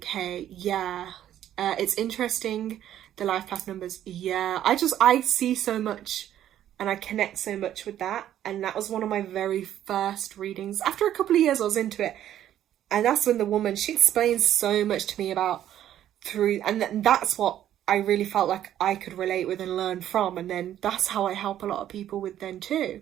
Yeah, it's interesting. The life path numbers, yeah. I see so much, and I connect so much with that. And that was one of my very first readings. After a couple of years, I was into it. And that's when the woman, she explains so much to me about and that's what I really felt like I could relate with and learn from. And then that's how I help a lot of people with then too.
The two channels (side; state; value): left; quieter; 11.5 dB